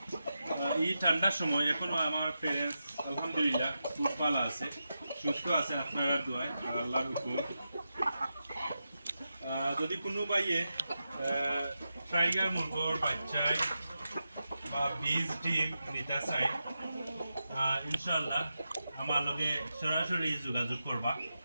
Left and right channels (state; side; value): inverted; both; correlation -0.89